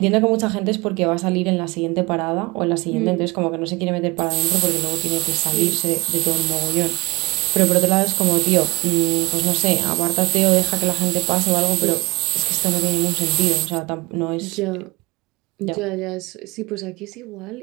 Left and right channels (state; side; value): quieter; left; 23.4 dB